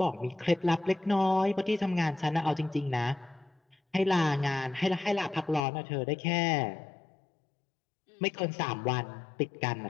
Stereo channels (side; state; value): right; drops out; at 5.6 s